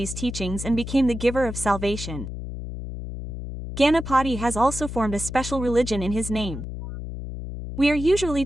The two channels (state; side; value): noise; left; hum, 8 dB below the sound